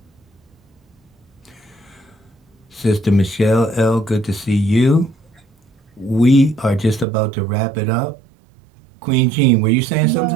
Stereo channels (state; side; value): drops out; left; at 7.1 s